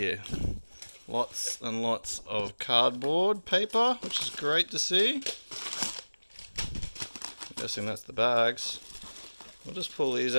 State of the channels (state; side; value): inverted; both; correlation -1.00